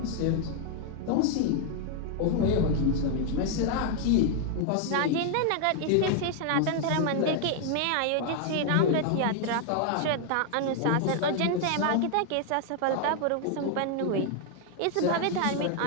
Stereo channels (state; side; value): different; both; correlation 0.00